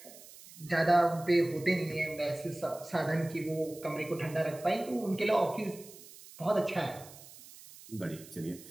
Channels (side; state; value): right; noise; hiss, 19 dB below the sound